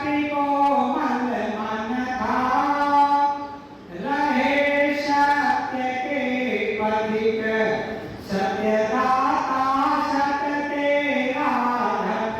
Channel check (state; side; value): identical; both; correlation 1.00